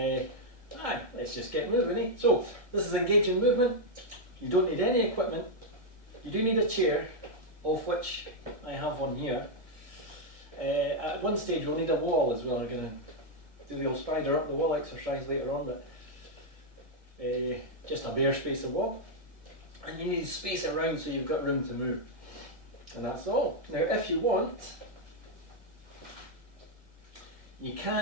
Let's just get moving, eh? So, this is Engaging Movement. You don't need any equipment. You do need a chair, of which I have one here. At one stage we'll need a wall as well. I'm going to do the old spider up the wall exercise later on, but just a bare space of wall. And you need space around so you've got room to move. And that's all. Now if you want, you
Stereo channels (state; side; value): late; left; 1.8 ms